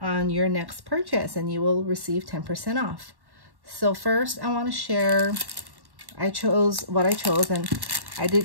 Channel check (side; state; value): left; late; 1.1 ms